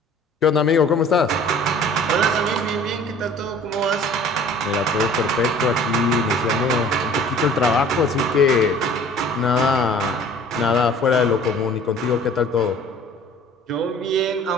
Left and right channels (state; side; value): normal; both; correlation 0.49